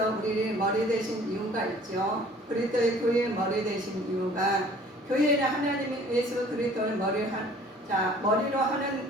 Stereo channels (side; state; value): both; normal; correlation 0.52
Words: 우리의 머리 되신 이유가 있죠. 그리스도의 교회의 머리 되신 이유가 교회는 하나님이 예수 그리스도를 머리로 하는